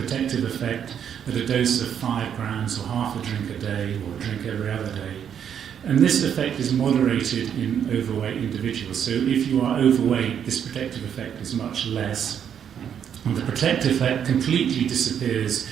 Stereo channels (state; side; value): quieter; left; 8.5 dB